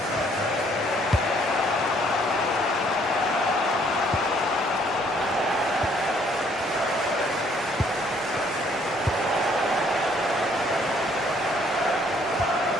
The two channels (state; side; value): normal; both; correlation 0.64